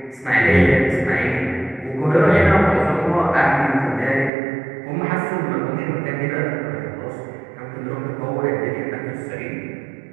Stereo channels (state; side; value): drops out; left; at 4.3 s